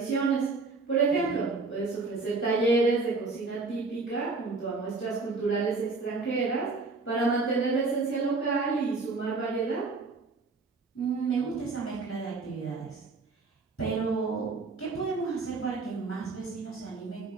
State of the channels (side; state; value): left; quieter; 3.9 dB